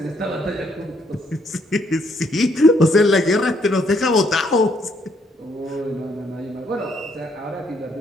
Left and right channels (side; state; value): both; normal; correlation 0.71